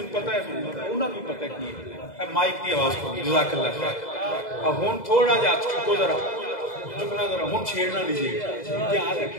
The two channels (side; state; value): right; late; 2.0 ms